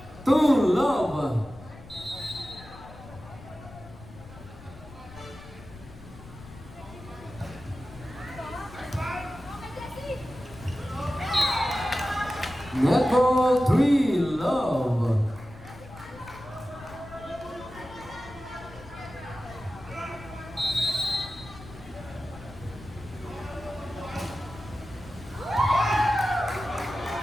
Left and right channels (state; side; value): noise; left; rumble, 17 dB below the sound